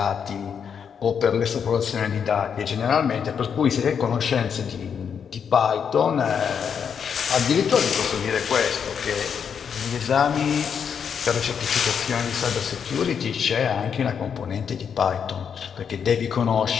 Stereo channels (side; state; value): right; quieter; 7.2 dB